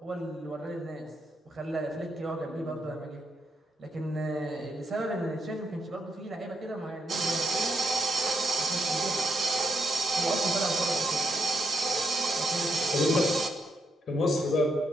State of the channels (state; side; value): normal; both; correlation 0.80